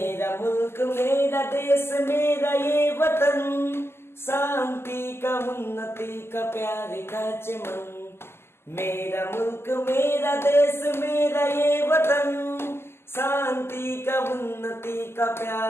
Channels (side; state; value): right; late; 0.12 ms